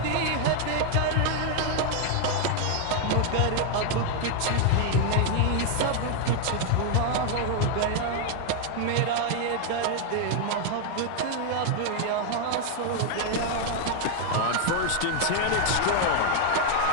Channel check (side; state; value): both; different; correlation 0.00